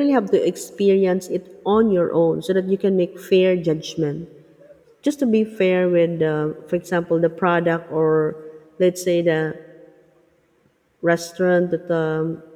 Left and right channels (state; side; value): identical; both; correlation 1.00